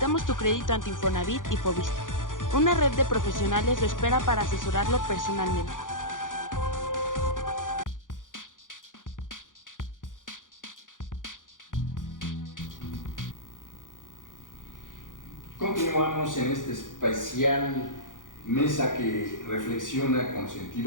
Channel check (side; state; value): right; late; 0.88 ms